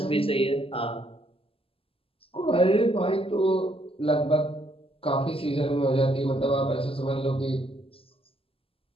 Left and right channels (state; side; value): late; right; 0.27 ms